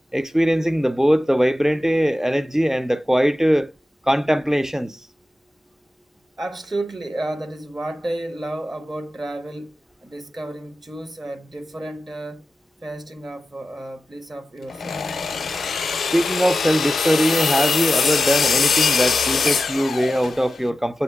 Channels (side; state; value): both; normal; correlation 0.93